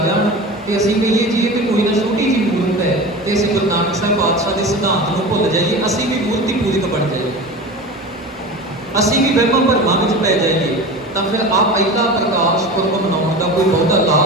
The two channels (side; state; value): both; normal; correlation 0.31